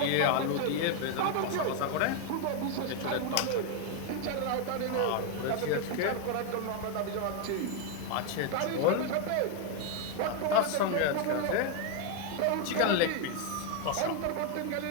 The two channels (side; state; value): both; different; correlation 0.01